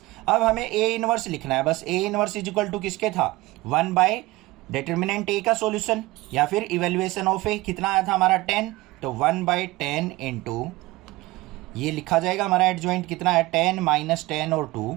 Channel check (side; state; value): left; quieter; 19.9 dB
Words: अब हमें A इनवर्स लिखना है बस। A इनवर्स = किसके था, 1 डिटर्मिनेंट A का सॉल्यूशन या फिर इवेल्युएशन ऑफ A, कितना आया था हमारा 10, तो 1/10 इंटू ये लिखा जाएगा हमारा एडजॉइंट कितना है, 10 - 10 और 2,